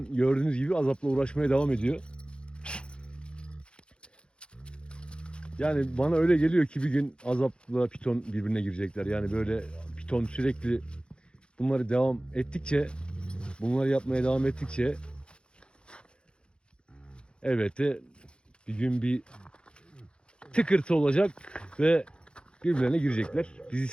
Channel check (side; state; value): right; late; 0.054 ms